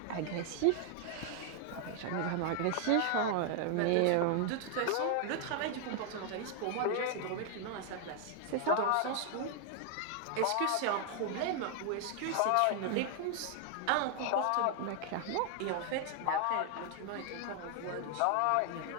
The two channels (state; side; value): different; both; correlation 0.00